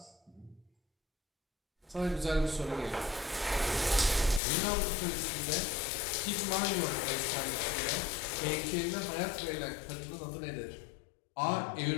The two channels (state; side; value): drops out; right; at 4.4 s